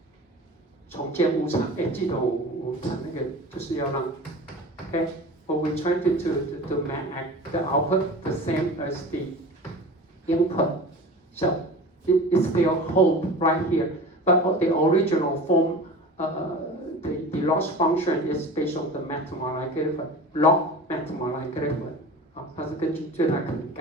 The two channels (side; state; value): both; normal; correlation 0.36